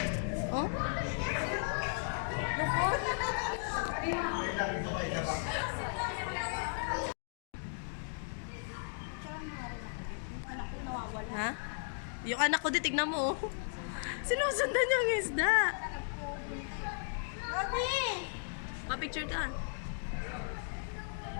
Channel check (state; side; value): silent; right; digital silence